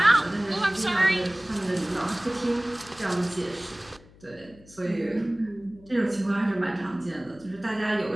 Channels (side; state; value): left; noise; hum, 24 dB below the sound